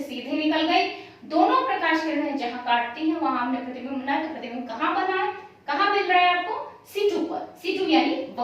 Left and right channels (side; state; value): both; identical; correlation 1.00